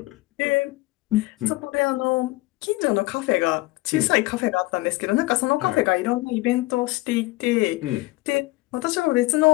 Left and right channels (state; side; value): quieter; right; 21.0 dB